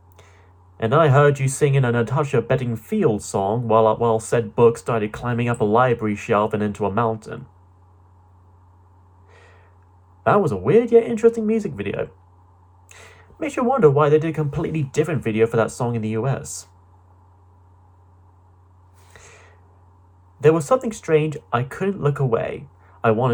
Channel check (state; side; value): identical; both; correlation 1.00